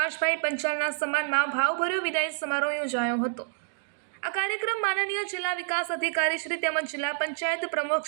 પંચાલના સન્માનમાં ભાવભર્યો વિદાય સમારોહ યોજાયો હતો. આ કાર્યક્રમ માનનીય જિલ્લા વિકાસ અધિકારી શ્રી તેમજ જિલ્લા પંચાયત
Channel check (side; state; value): left; silent; digital silence